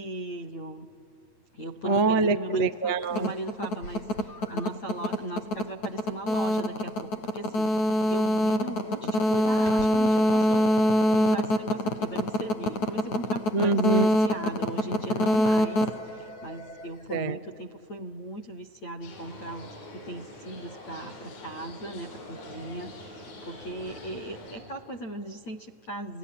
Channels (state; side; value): late; right; 9.2 ms